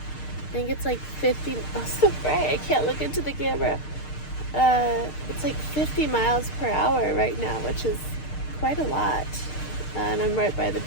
I think it's like 50, oh, so bright, I can't look into the camera. It's like 50 miles per hour right now, which is quite a lot. And I'm right by the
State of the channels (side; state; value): right; late; 6.6 ms